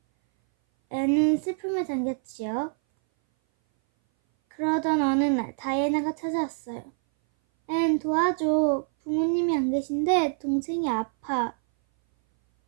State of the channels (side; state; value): left; silent; 59 dB below the other